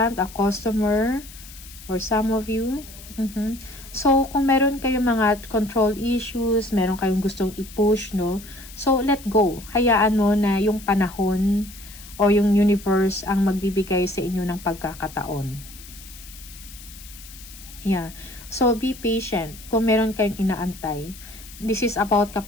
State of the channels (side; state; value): left; noise; hiss, 17 dB below the sound